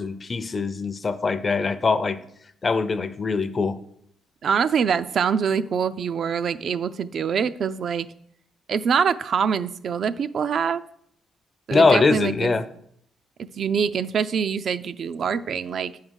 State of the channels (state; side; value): normal; both; correlation 0.78